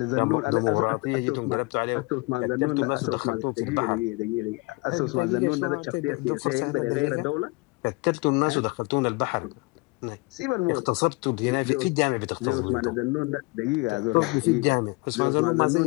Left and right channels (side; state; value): right; quieter; 26.4 dB